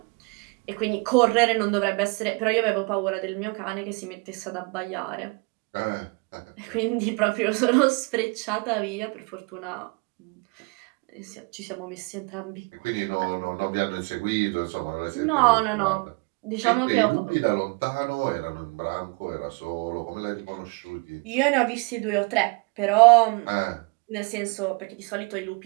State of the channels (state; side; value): quieter; left; 29.9 dB